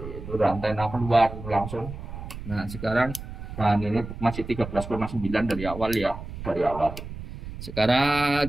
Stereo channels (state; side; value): noise; right; rumble, 10 dB below the sound